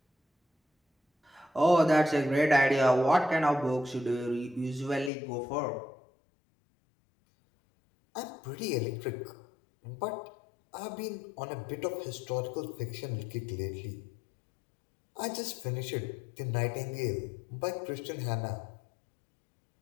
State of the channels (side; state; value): right; drops out; at 5.1 s